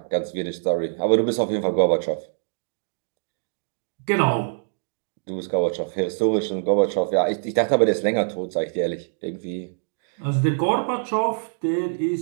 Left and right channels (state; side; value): silent; left; digital silence